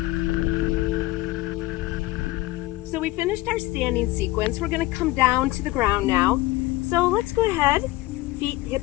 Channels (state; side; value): quieter; right; 18.5 dB